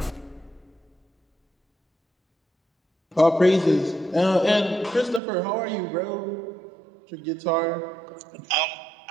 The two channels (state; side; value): drops out; left; at 5.2 s